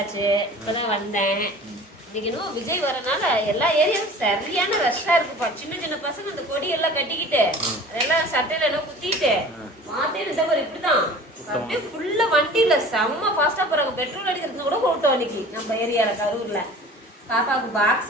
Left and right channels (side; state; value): both; normal; correlation 0.43